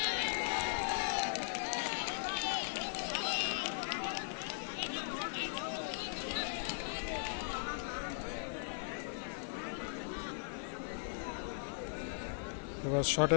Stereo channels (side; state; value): right; silent; digital silence